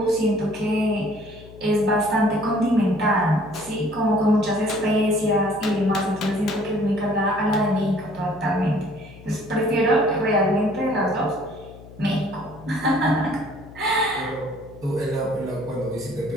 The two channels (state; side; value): noise; left; hum, 19 dB below the sound